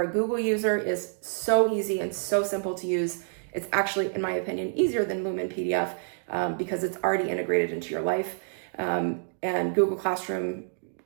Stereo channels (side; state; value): left; silent; digital silence